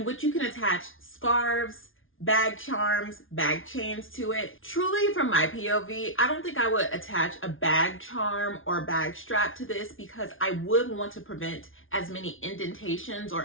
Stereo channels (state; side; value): late; right; 0.58 ms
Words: which you can attach scarves, bag charms, bag chains to it. Truly, from my POV, I don't think I would attach a bag charm or bag strap to this because I would want to prevent as many indentations